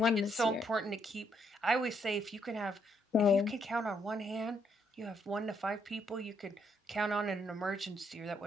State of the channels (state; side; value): normal; both; correlation 0.73